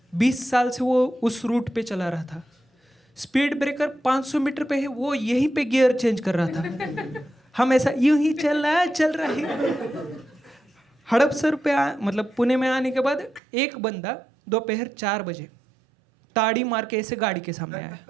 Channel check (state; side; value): drops out; left; at 13.4 s